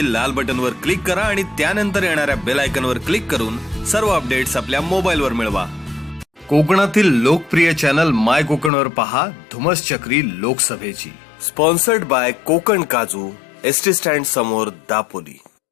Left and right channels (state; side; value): drops out; right; at 8.7 s